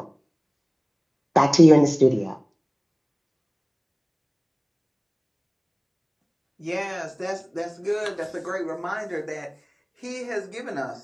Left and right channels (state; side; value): identical; both; correlation 1.00